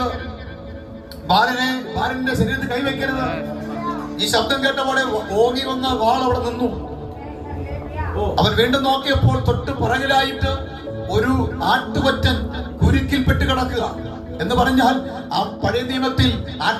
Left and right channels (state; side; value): identical; both; correlation 1.00